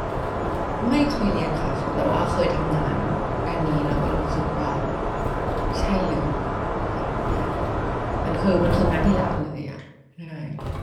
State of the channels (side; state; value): both; identical; correlation 1.00